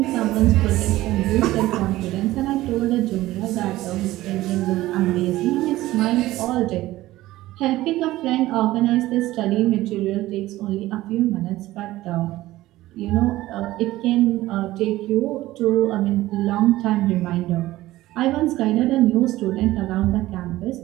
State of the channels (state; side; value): quieter; left; 16.6 dB